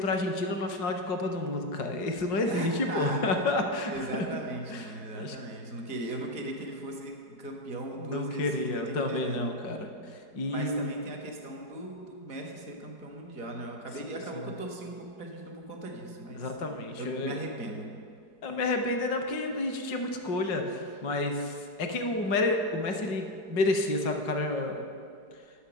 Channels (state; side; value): late; right; 4.8 ms